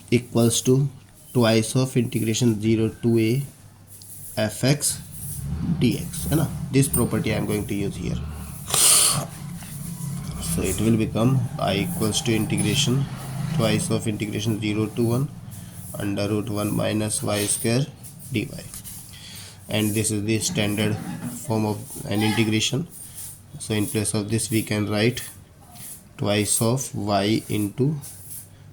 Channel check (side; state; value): both; identical; correlation 1.00